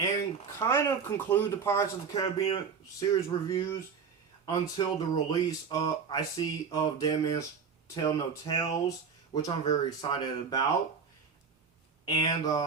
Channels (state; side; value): quieter; left; 6.1 dB